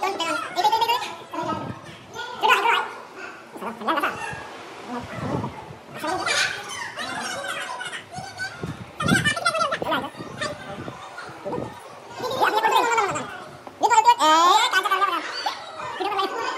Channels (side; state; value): both; identical; correlation 1.00